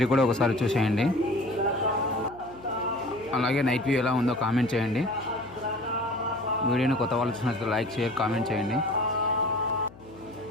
కూడా ఒకసారి చూసేయండి. అలాగే నైట్ వ్యూ ఎలా ఉందో కామెంట్ చేయండి. వీడియోని కొత్త వాళ్ళు చూసినట్లయితే లైక్, షేర్, కామెంట్ చేయండి.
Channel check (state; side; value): noise; left; hum, 20 dB below the sound